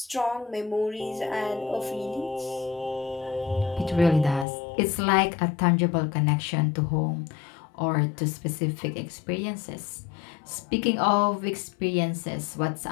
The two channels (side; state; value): right; drops out; at 4.5 s